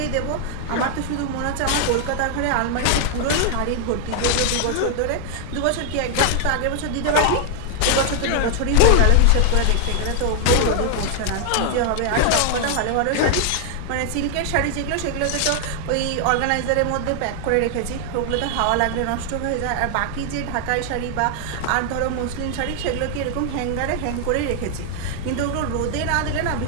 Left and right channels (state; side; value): different; both; correlation 0.00